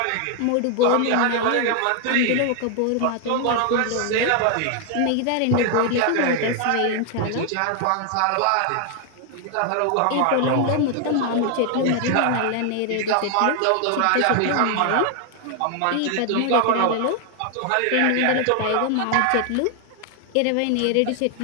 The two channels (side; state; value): both; different; correlation 0.00